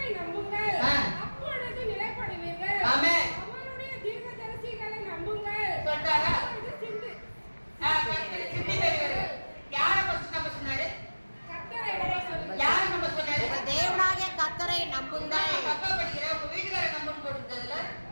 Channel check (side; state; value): both; inverted; correlation -1.00